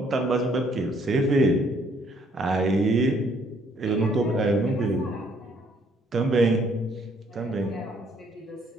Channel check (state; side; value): normal; both; correlation 0.65